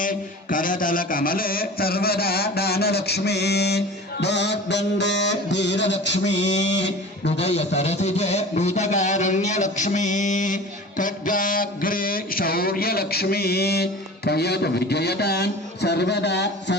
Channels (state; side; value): normal; both; correlation 0.38